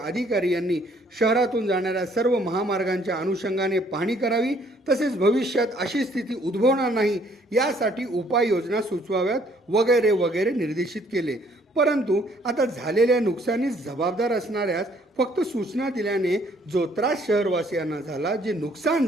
अधिकारी यांनी शहरातून जाणाऱ्या सर्व महामार्गांच्या अनुषंगाने पाहणी करावी, तसेच भविष्यात अशी स्थिती उद्भवणार नाही यासाठी उपाययोजना सुचवाव्यात वगैरे वगैरे निर्देशित केले। परंतु आता झालेल्या नुकसानीस जबाबदार असणाऱ्यास फक्त सूचना दिल्याने जो त्रास शहरवासियांना झाला, जे नुकसान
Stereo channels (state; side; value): normal; both; correlation 0.63